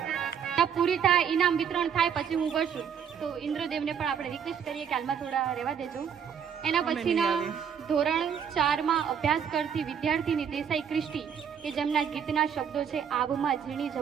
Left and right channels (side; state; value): left; quieter; 7.8 dB